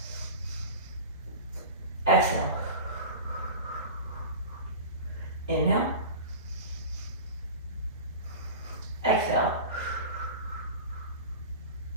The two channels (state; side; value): inverted; both; correlation -0.32